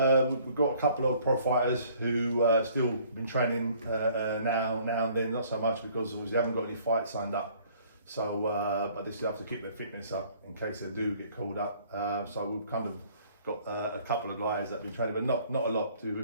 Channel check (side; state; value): both; inverted; correlation -0.58